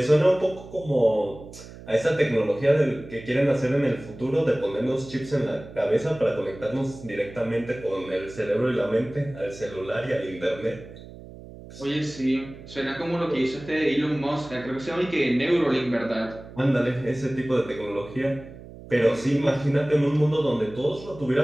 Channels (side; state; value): right; noise; hum, 16 dB below the sound